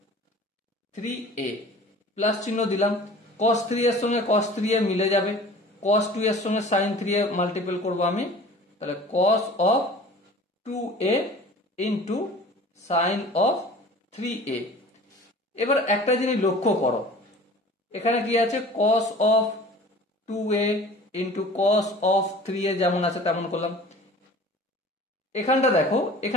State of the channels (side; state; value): both; normal; correlation 0.44